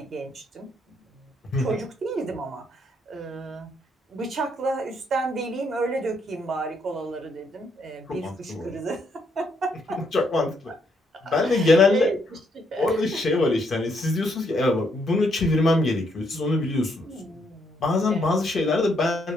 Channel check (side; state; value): both; normal; correlation 0.73